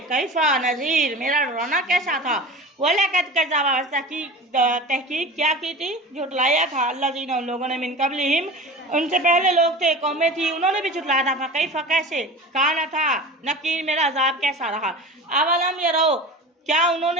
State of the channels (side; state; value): both; normal; correlation 0.34